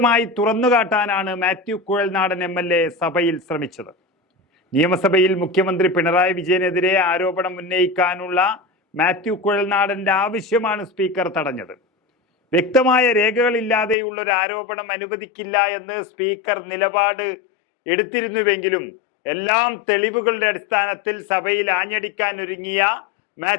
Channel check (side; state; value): right; drops out; at 14.0 s